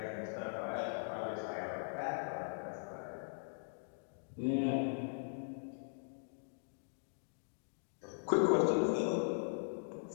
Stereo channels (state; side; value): silent; right; digital silence